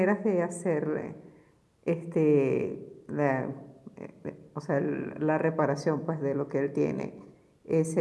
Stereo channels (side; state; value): both; identical; correlation 1.00